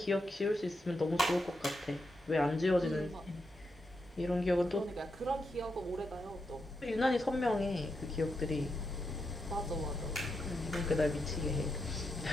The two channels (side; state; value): both; normal; correlation 0.84